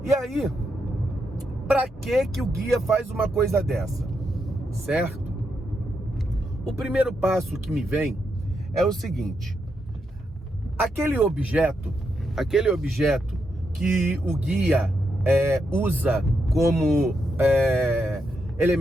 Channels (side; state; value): both; normal; correlation 0.82